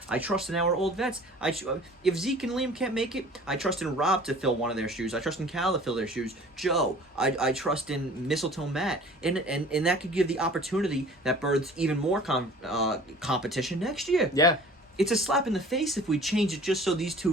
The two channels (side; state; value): both; normal; correlation 0.47